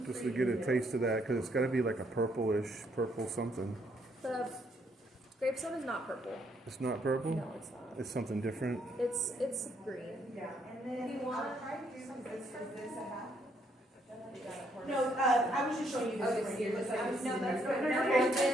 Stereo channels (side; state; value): both; normal; correlation 0.71